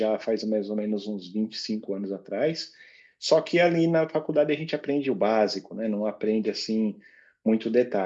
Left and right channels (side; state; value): both; identical; correlation 1.00